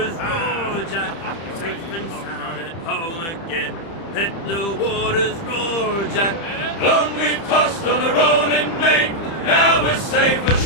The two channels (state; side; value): late; right; 30 ms